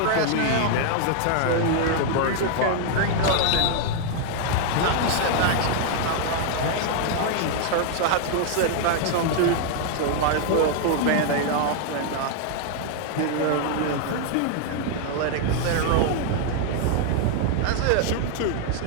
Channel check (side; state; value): both; different; correlation 0.00